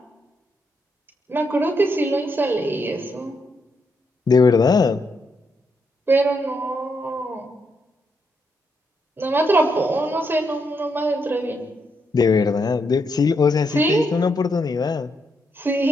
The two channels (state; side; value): normal; both; correlation 0.79